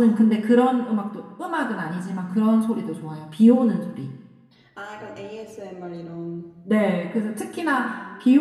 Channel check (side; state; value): both; identical; correlation 1.00